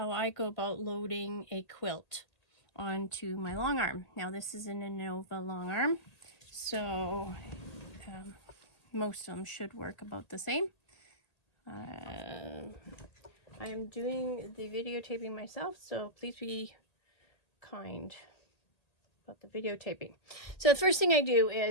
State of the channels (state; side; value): late; right; 1.8 ms